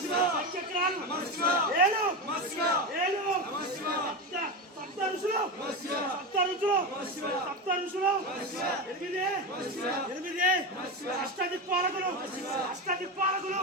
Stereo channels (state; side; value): normal; both; correlation 0.18